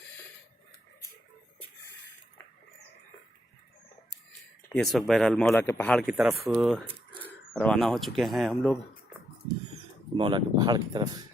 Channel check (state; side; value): normal; both; correlation 0.78